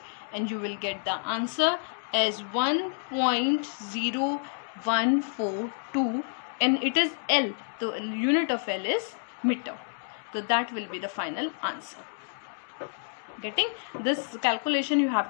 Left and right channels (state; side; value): silent; right; digital silence